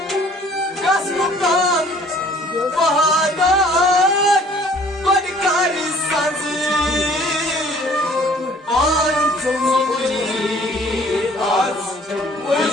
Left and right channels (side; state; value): both; normal; correlation 0.55